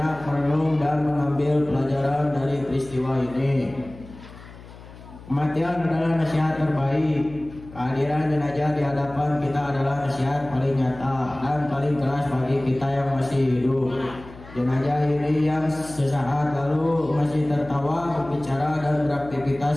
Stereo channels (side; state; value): left; noise; hum, 18 dB below the sound